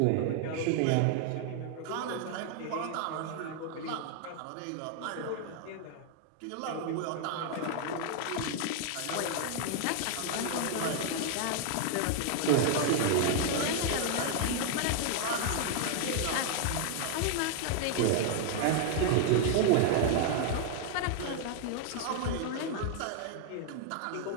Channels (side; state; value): both; different; correlation 0.00